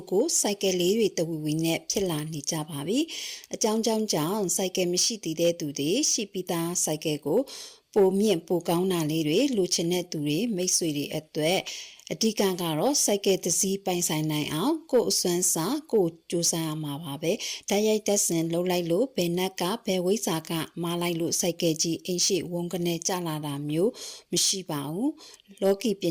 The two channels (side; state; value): both; identical; correlation 1.00